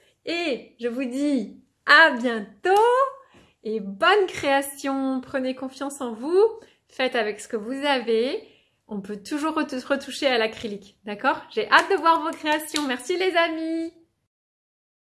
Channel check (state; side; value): identical; both; correlation 1.00